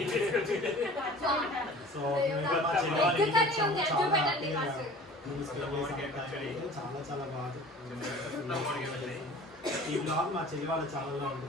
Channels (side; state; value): both; normal; correlation 0.44